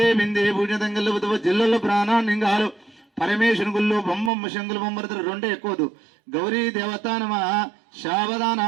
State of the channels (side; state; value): left; drops out; at 4.3 s